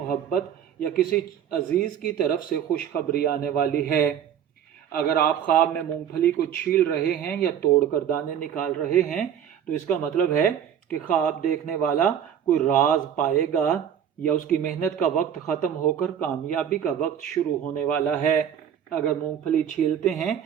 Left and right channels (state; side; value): quieter; left; 9.1 dB